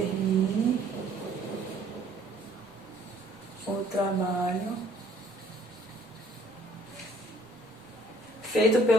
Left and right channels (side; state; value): left; noise; rumble, 29 dB below the sound